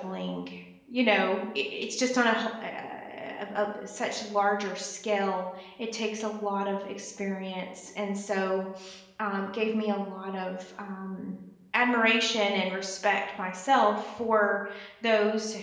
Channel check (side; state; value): both; identical; correlation 1.00